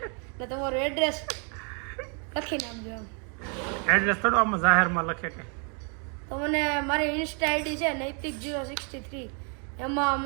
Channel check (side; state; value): left; quieter; 38.1 dB